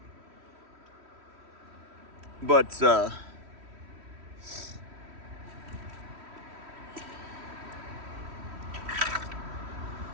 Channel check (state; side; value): late; left; 3.1 ms